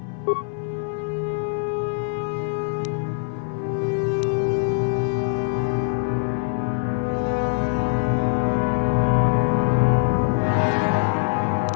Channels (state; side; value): silent; right; 57 dB below the other